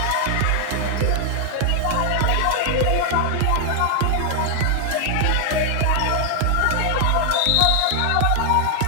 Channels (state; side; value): different; both; correlation 0.00